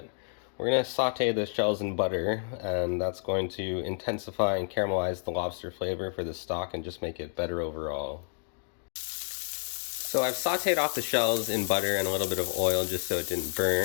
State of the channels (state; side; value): silent; right; digital silence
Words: We're going to saute the shells in butter, and that's going to intensify and caramelize the lobster flavor for the stock and just make it better overall. So I've sauteed off the shells in butter and a little bit of oil just so it didn't